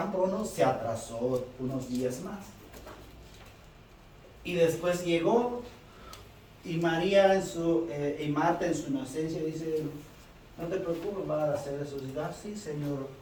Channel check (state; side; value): identical; both; correlation 1.00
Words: pronto, se atrasó unos días más. Y después llegó, y María y Marta en su inocencia dice: no te preocupes, va a hacer resucitar. Sí, Señor,